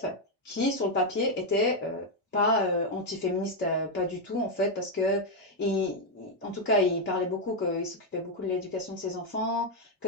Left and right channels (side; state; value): both; normal; correlation 0.02